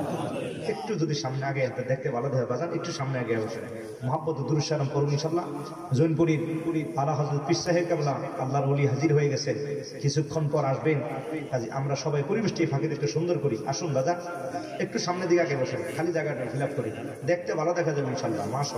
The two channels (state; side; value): identical; both; correlation 1.00